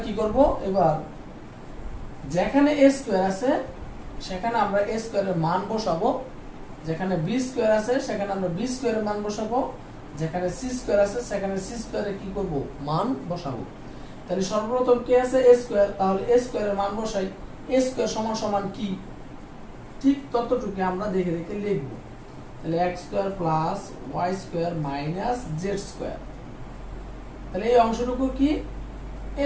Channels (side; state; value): both; identical; correlation 1.00